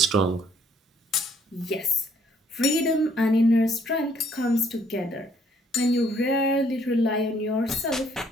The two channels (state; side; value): normal; both; correlation 0.65